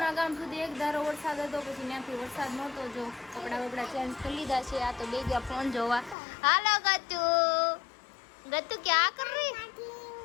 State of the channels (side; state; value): right; drops out; at 6.2 s